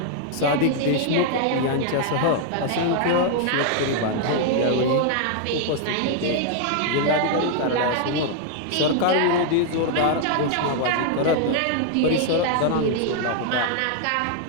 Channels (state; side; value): different; both; correlation 0.00